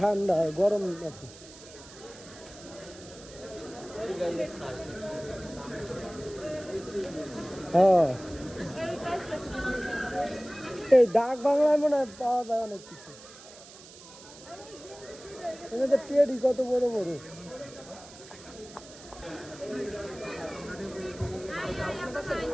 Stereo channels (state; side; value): noise; right; hiss, 18 dB below the sound